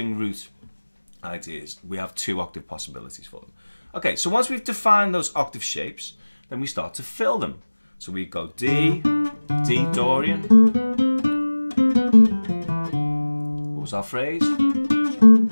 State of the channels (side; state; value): both; inverted; correlation -1.00